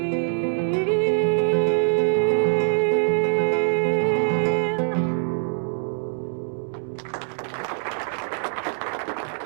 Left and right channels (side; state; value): left; silent; digital silence